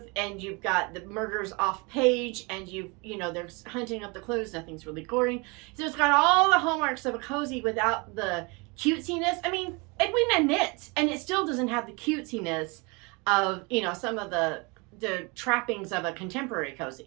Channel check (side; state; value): left; quieter; 28.8 dB